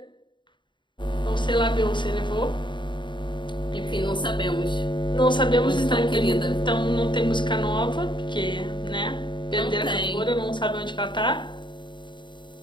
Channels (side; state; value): right; late; 0.23 ms